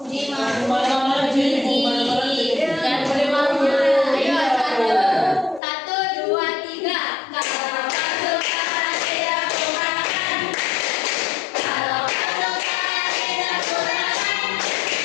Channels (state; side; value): drops out; right; at 5.6 s